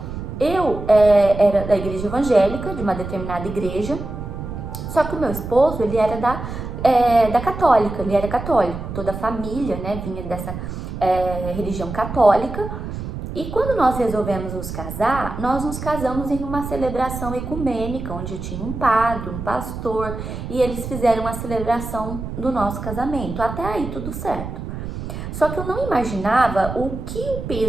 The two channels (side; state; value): right; noise; rumble, 7 dB below the sound